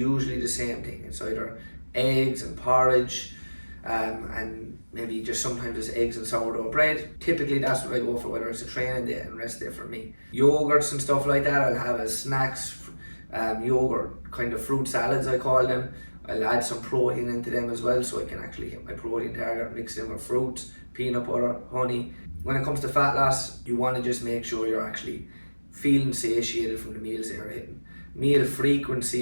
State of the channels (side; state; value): both; inverted; correlation -1.00